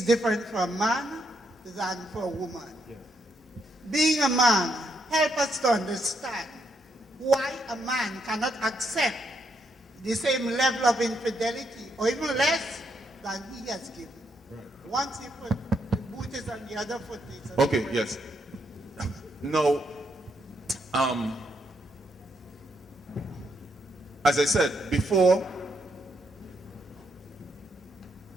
different for a man than for a woman. Being a man, help us to understand why a man cannot accept the same level of infidelity or even less than he has given. Once he put the boot is on the other foot. Okay, yes. Now, as I said before,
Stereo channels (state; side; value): normal; both; correlation 0.77